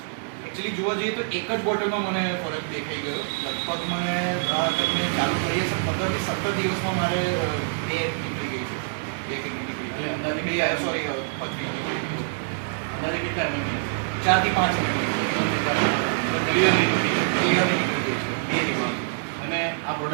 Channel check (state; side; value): silent; left; 59 dB below the other